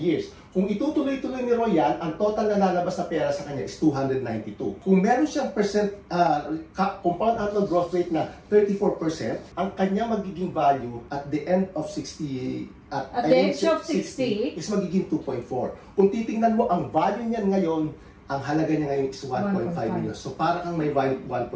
years. Kung itutuloy-tuloy ni Roy yan, ang total na lalabas na pera sa kanya is 292. Kung meron siyang compound annual growth rate na 34%, ang kanya magiging value at the end of 60 at the age of 60 is magiging 2.4. Kung titingnan mo ang value niyan ngayon, ang halaga niya ngayon is 1.5 million. So, para kang may 1.5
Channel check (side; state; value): both; identical; correlation 1.00